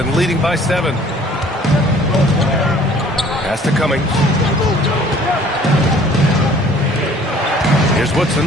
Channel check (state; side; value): normal; both; correlation 0.54